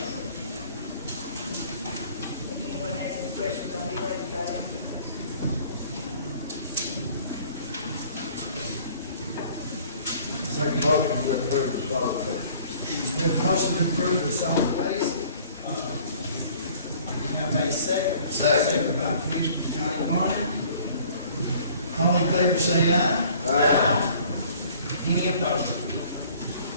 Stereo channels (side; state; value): both; inverted; correlation -0.52